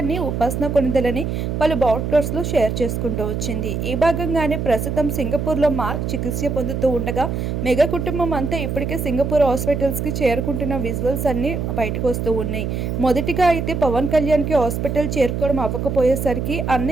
ఉపాసన కొణిదెలని పలు బ్రాడ్కాస్ట్లో షేర్ చేసుకుంటూ వచ్చింది. ఈ భాగంగానే ప్రస్తుతం సింగపూర్లో మార్క్ చికిత్స పొందుతూ ఉండగా మెగా కుటుంబం అంతా ఇప్పటికే సింగపూర్ హాస్పిటల్స్కి చేరుకుంటున్న విజువల్స్ అన్ని బయటకు వస్తూ ఉన్నాయి. మొదటిగా అయితే పవన్ కళ్యాణ్కి హాస్పిటల్ చేరుకోవడం అవ్వకపోయేసరికి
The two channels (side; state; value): right; noise; hum, 2 dB below the sound